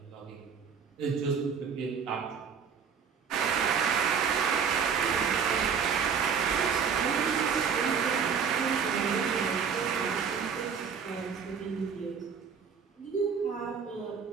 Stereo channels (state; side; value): quieter; left; 6.6 dB